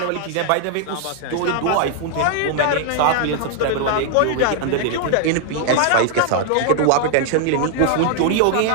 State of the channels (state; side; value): different; both; correlation 0.00